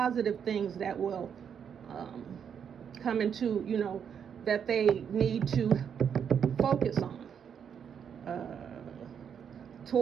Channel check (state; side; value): quieter; left; 7.7 dB